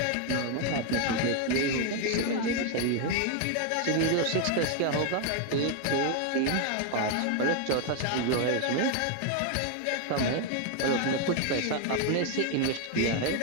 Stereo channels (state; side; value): different; both; correlation 0.01